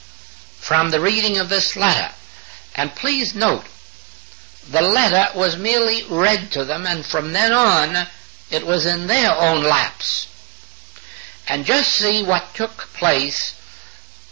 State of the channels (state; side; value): quieter; left; 26.8 dB